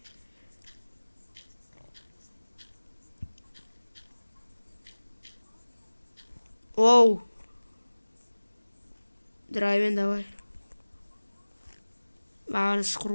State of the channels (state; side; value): inverted; both; correlation -1.00